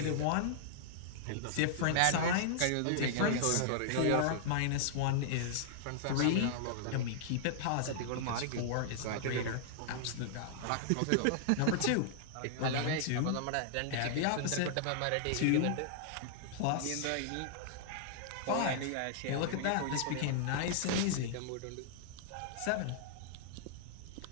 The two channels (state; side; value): different; both; correlation -0.01